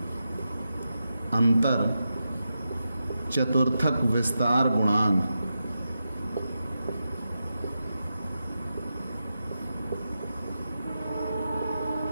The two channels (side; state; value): both; inverted; correlation -0.89